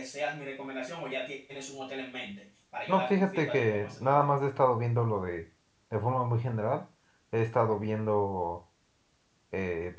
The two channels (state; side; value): identical; both; correlation 1.00